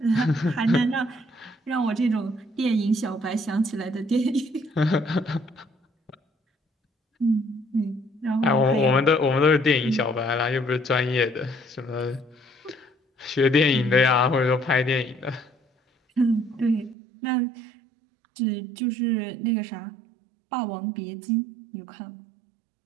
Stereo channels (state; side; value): drops out; left; at 16.9 s